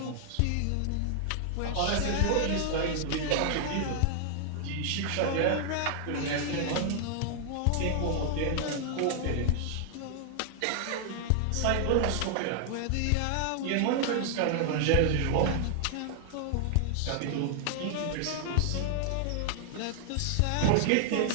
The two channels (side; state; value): both; different; correlation 0.00